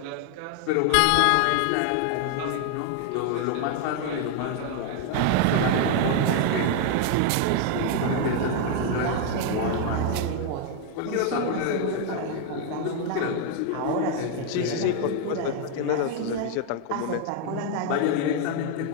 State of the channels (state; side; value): different; both; correlation 0.00